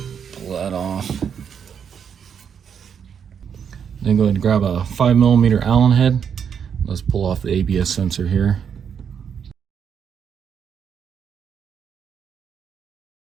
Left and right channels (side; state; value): left; quieter; 7.5 dB